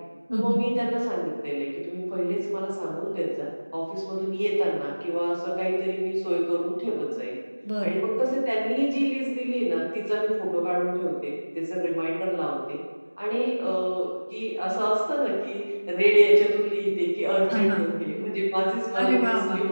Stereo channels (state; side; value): inverted; both; correlation -1.00